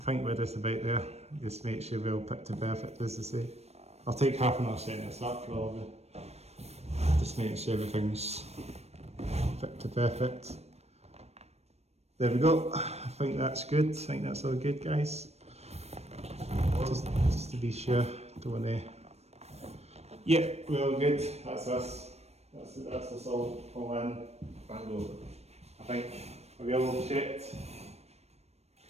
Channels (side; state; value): left; late; 0.31 ms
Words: think we're just about there. Just make sure we're all picture perfect, as they say. I'll take half an hour setting this up probably. Just making sure everything's fit to perfect. There we go. I think that's good. I think that's all good, guys. Just to be sure, don't want to. Yeah, we're all good. That's us. That's us all in. Bango. I think we all checked.